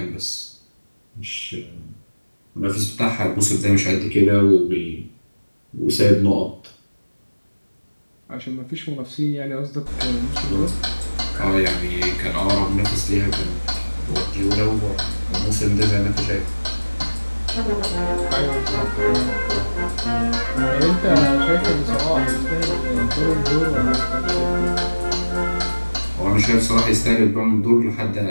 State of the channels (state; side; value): inverted; both; correlation -1.00